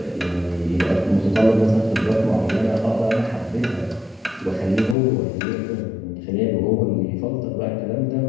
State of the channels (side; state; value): right; drops out; at 5.0 s